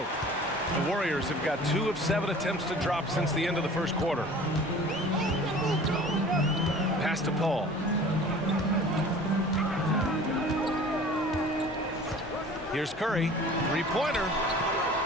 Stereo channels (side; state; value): both; normal; correlation 0.44